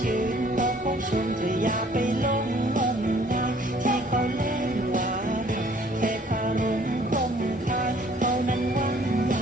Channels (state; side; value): normal; both; correlation 0.58